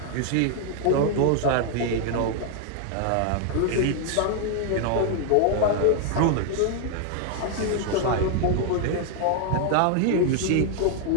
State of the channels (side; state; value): both; different; correlation 0.00